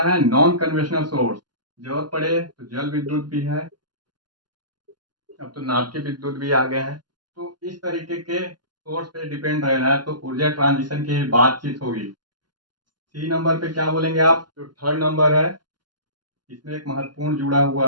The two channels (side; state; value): left; late; 0.71 ms